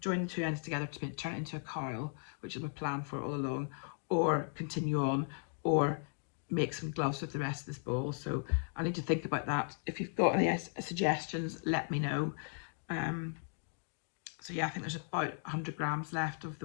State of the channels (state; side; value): silent; right; 53 dB below the other